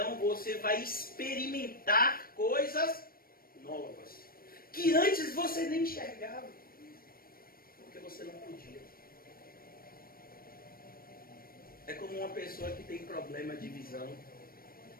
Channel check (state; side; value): late; right; 0.43 ms